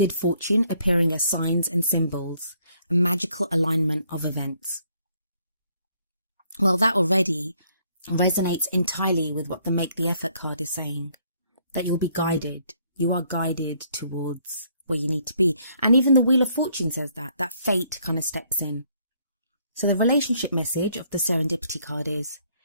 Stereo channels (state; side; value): inverted; both; correlation -0.67